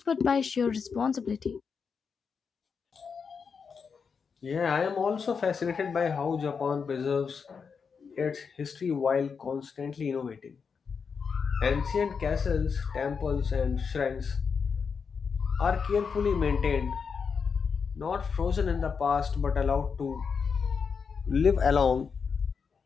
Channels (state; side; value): quieter; right; 5.8 dB